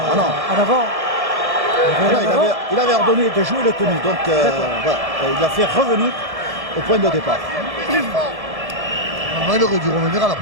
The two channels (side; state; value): left; late; 1.1 ms